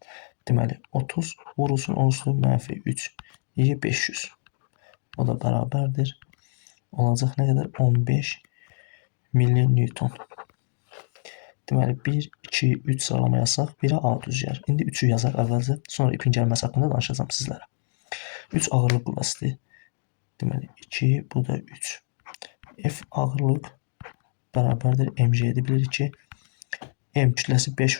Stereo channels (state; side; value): silent; right; digital silence